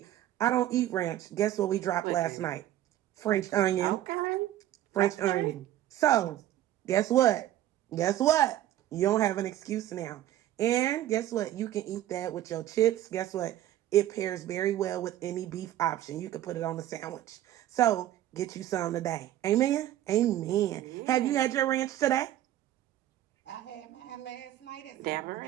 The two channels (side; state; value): left; quieter; 13.1 dB